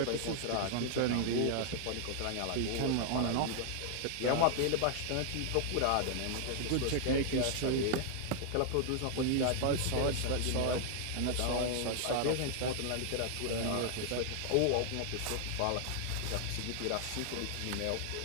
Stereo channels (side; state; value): both; different; correlation 0.00